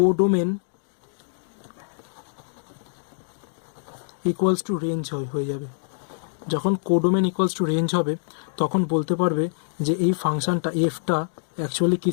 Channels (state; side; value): silent; right; digital silence